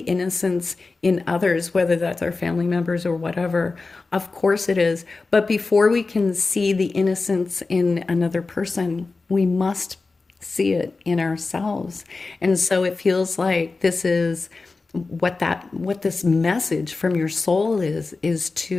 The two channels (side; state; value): right; quieter; 3.8 dB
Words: in others, whether that's our family members or whatever. Of course it is. But before we can see the innocence in another person, we must see it in ourselves. And so it feels like this is what this message from your soul is